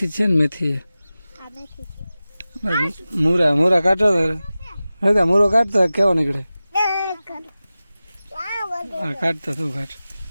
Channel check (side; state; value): both; inverted; correlation -0.96